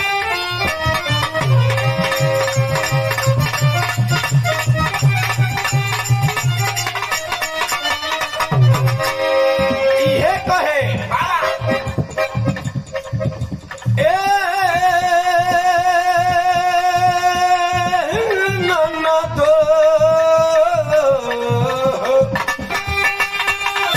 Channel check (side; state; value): both; identical; correlation 1.00